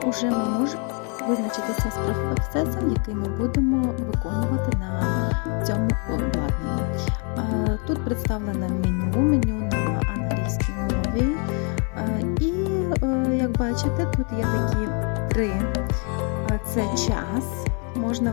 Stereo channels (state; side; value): quieter; right; 38.2 dB